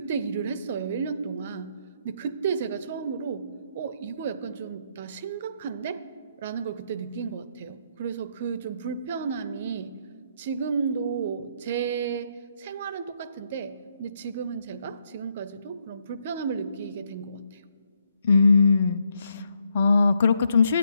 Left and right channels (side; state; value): both; inverted; correlation -0.75